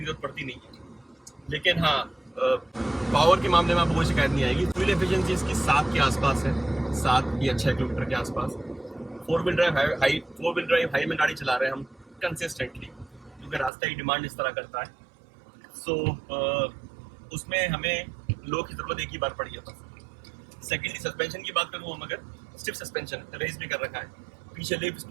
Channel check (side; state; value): left; drops out; at 13.7 s